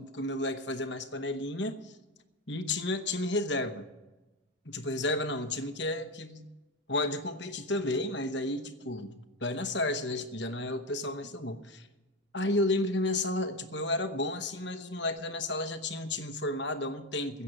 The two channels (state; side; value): normal; both; correlation 0.15